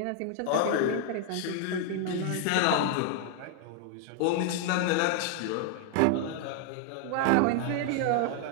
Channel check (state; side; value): different; both; correlation 0.00